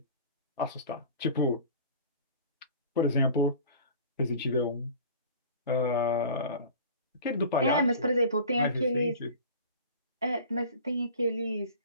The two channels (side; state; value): both; inverted; correlation -0.41